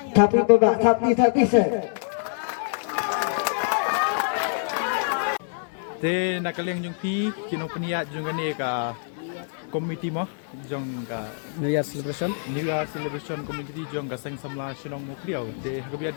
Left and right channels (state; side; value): silent; right; 61 dB below the other